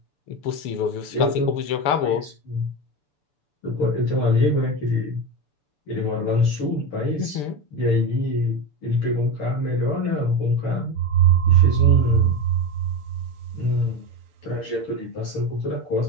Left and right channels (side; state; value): right; late; 6.9 ms